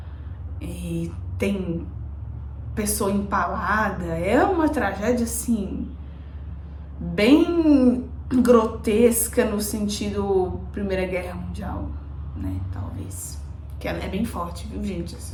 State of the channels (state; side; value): identical; both; correlation 1.00